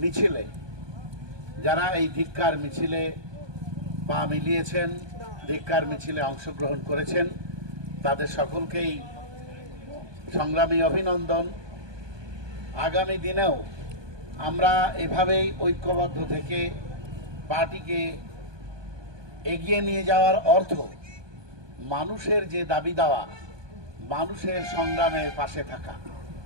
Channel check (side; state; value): left; late; 1.2 ms